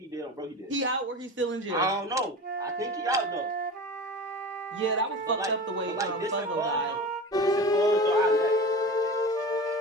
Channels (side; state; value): both; normal; correlation 0.32